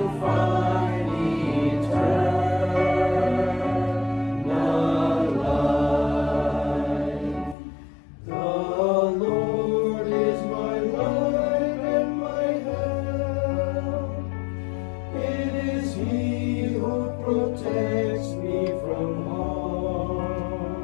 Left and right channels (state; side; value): drops out; right; at 7.6 s